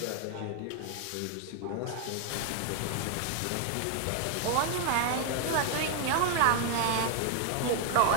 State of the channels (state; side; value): different; both; correlation 0.00